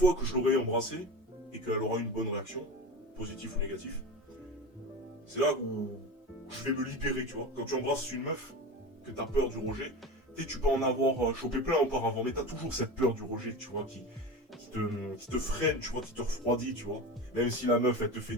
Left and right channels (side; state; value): both; normal; correlation 0.28